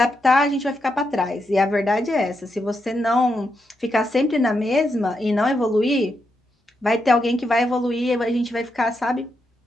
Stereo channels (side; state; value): both; normal; correlation 0.83